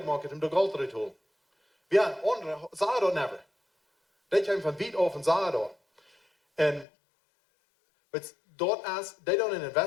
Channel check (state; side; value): drops out; right; at 6.9 s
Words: om de geld eruit te halen. Ja, andere zagen dat never. Die kwamen van wiet af en zagen dat. En dort is, die doen een